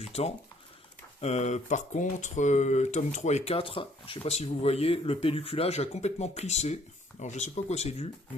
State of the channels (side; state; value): both; normal; correlation 0.63